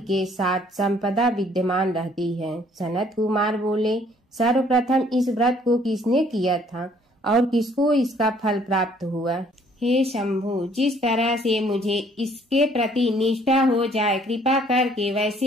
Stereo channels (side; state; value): both; normal; correlation 0.61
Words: साथ संपदा विद्यमान रहती है। सनत कुमार बोले, सर्वप्रथम इस व्रत को किसने किया था और किसको इसका फल प्राप्त हुआ? हे शंभु, जिस तरह से मुझे इसके प्रति निष्ठा हो जाए, कृपा करके